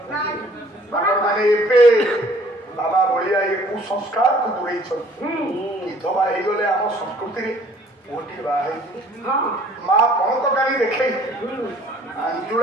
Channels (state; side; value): normal; both; correlation 0.56